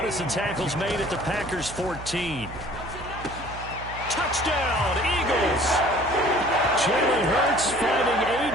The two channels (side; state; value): right; noise; hum, 13 dB below the sound